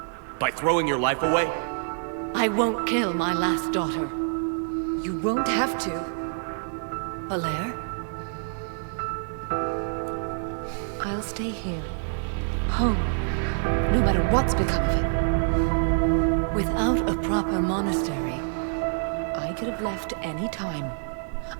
By throwing your life away? I won't kill my last daughter. You won't have to. Falere? I'll stay here. Home. No matter what's become of it. Without a proper monastery, I could have left any time.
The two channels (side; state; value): left; silent; digital silence